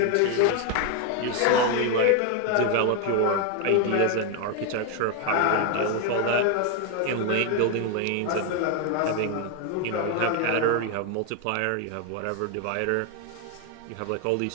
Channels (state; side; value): different; both; correlation 0.01